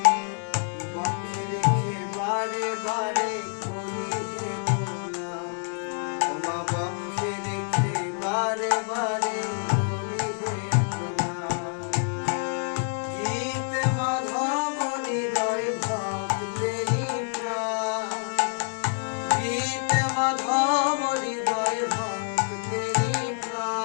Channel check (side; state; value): right; silent; 57 dB below the other